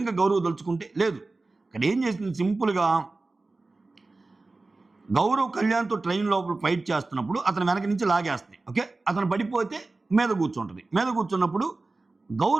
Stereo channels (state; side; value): quieter; left; 3.4 dB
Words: గౌరవ్ దలుచుకుంటే? లేదు. ఇక్కడ ఏం చేసింది సింపుల్‌గా గౌరవ్ కళ్యాణ్‌తో ట్రైన్ లోపల ఫైట్ చేస్తున్నప్పుడు అతను వెనక నుంచి లాగేస్తుంది. ఓకే. అతను పడిపోతే మీద కూర్చుంటది. మీద కూర్చున్నప్పుడు